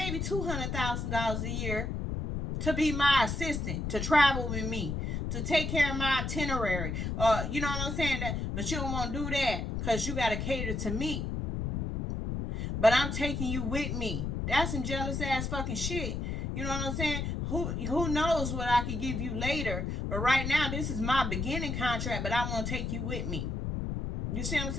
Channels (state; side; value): noise; left; rumble, 2 dB below the sound